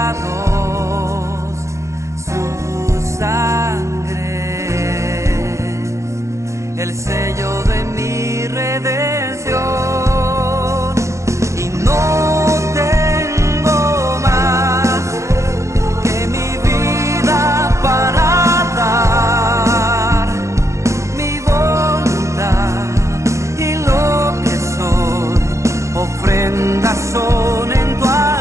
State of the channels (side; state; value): left; late; 0.14 ms